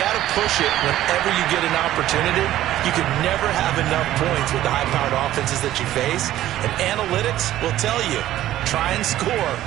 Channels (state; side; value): quieter; left; 13.6 dB